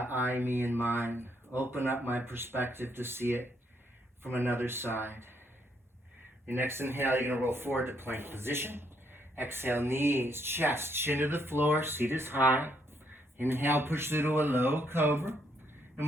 I, me, and mine. Open up my perspective to see it from another side. Your next inhale, you're going to roll forward to plank position. Exhale, knees, chest, chin to the floor, seat is high. Inhale, push through to a low cobra,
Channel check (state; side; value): normal; both; correlation 0.73